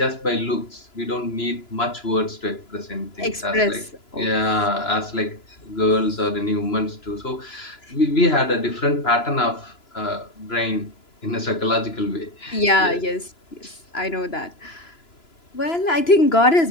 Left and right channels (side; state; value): right; late; 2.9 ms